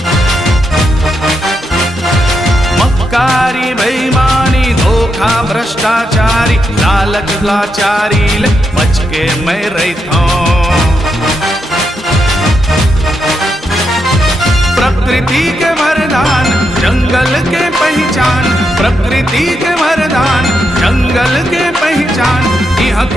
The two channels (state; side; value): normal; both; correlation 0.83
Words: मक्कारी बेईमानी धोखा भ्रष्टाचारी लालच लाचारी ले बच के मैं रहितो। प्रकृति के वरदान जंगल के पहचान, प्रकृति के वरदान जंगल के पहचान, यहाँ